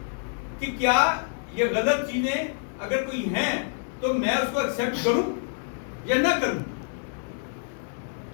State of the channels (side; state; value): right; silent; digital silence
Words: کہ کیا یہ غلط چیزیں اگر کوئی ہیں تو میں اس کو ایکسپٹ کروں یا نہ کروں.